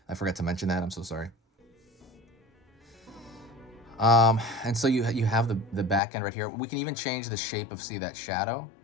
I forgot to mention that. I'm so sorry. And so you have the back end right here. We can even change the shape of, see, that shadow.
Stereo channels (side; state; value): right; drops out; at 6.0 s